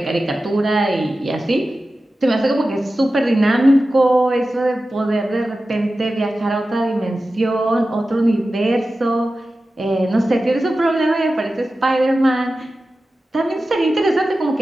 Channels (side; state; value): both; normal; correlation 0.94